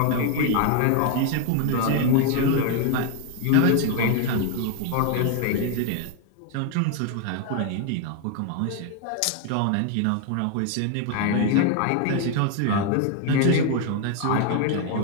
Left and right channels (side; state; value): both; different; correlation 0.01